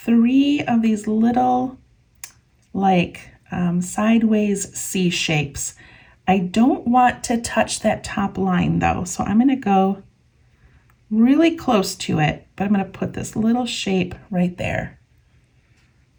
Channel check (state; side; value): identical; both; correlation 1.00